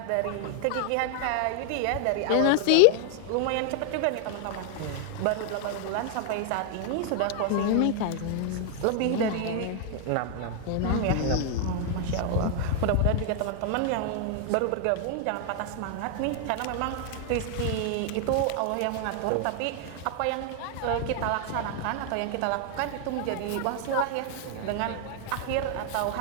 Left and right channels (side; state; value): both; different; correlation 0.00